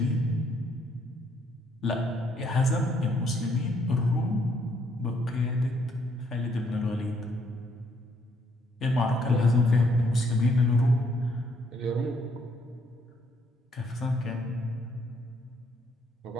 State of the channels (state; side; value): normal; both; correlation 0.70